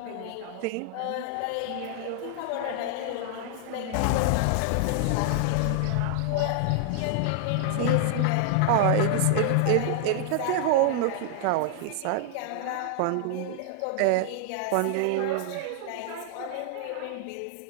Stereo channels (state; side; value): different; both; correlation 0.00